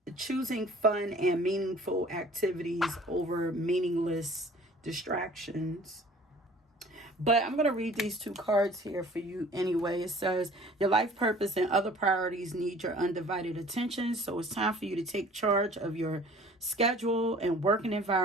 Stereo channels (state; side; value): normal; both; correlation 0.50